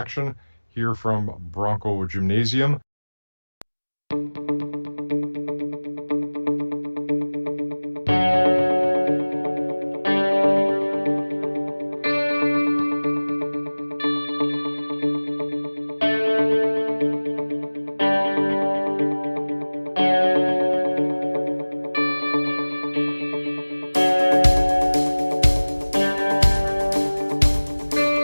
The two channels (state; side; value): inverted; both; correlation -1.00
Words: here from Bronco Gymnasium.